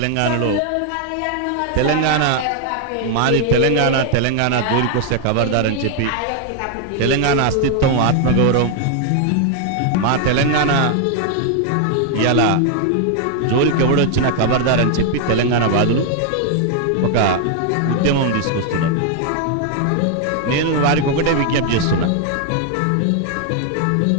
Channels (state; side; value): different; both; correlation 0.00